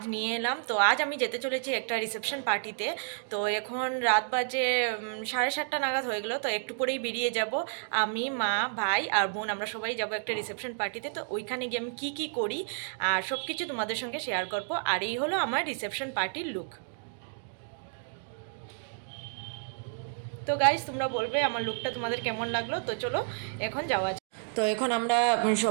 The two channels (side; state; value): left; silent; digital silence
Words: নিয়ে এলাম। তো আজ আমি যেতে চলেছি একটা রিসেপশন পার্টিতে। তো এখন রাত বাজে 7:30 নাগাদ হয়ে গেলো। তো একটু পরেই বেরিয়ে যাব। আমি, মা, ভাই আর বোন, আমরা সবাই যাব একটা রিসেপশন পার্টিতে। তো ওইখানে গিয়ে আমি কী করি আর সব কিছু তোমাদের সঙ্গে শেয়ার করব। আর এই হলো আমার রিসেপশন পার্টির লুক। তো গাইজ, তোমরা বলবে আমার লুকটা তোমাদের কেমন লাগলো। তো চলো এখন যাওয়া যাক। তো এখন আমরা